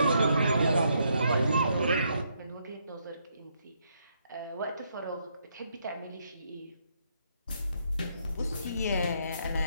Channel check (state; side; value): inverted; both; correlation -0.75